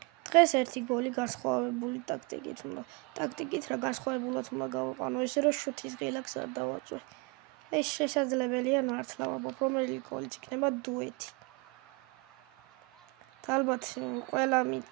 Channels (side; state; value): left; quieter; 29.6 dB